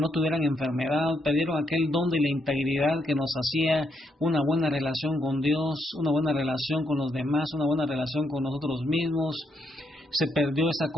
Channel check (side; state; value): both; normal; correlation 0.77